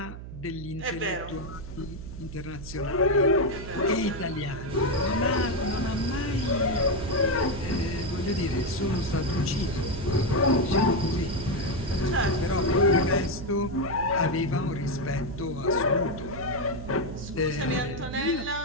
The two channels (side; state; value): right; noise; hum, 11 dB below the sound